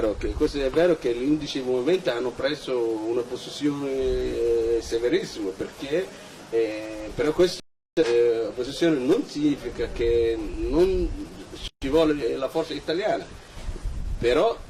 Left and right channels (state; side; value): identical; both; correlation 1.00